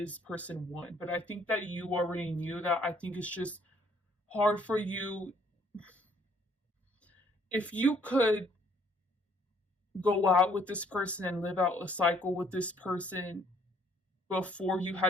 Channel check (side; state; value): both; normal; correlation 0.64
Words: person one. But I think that you already knew that. I think it's just hard for you. If you could go out with this person and live out a cycle with this person before you